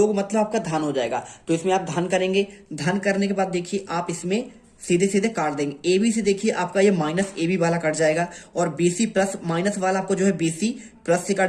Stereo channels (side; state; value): both; identical; correlation 1.00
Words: मतलब आपका धन हो जाएगा तो इसमें आप धन करेंगे। धन करने के बाद देखिए आप इसमें सीधे सीधे काट देंगे। ए बी से देखिए आपका ये माइनस ए बी वाला कट जाएगा और बी सी प्लस माइनस वाला आपको जो है बी सी प्लस से